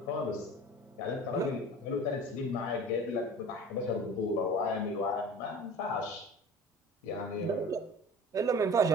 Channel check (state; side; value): normal; both; correlation 0.40